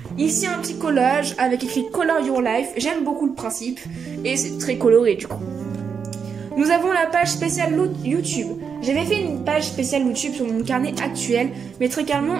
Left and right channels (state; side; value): quieter; left; 6.5 dB